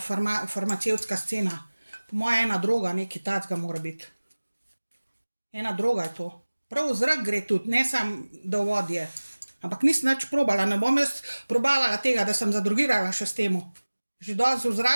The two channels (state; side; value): inverted; both; correlation -1.00